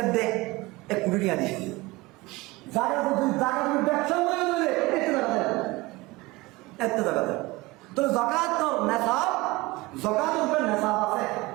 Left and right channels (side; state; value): left; quieter; 21.8 dB